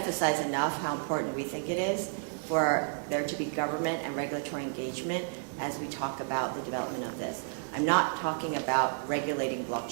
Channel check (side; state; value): left; silent; digital silence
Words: enough how important we think it is for there to be government and regulatory engagement as we talk about the development of this. I'm not talking about regulating